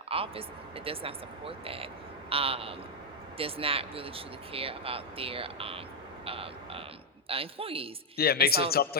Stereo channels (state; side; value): normal; both; correlation -0.01